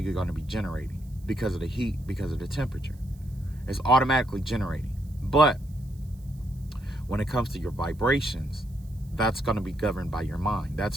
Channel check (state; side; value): noise; right; hiss, 29 dB below the sound